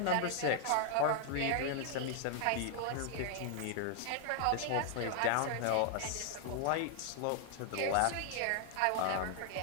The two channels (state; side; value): different; both; correlation 0.00